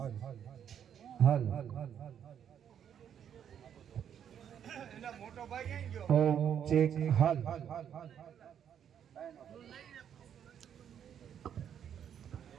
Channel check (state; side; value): quieter; left; 8.9 dB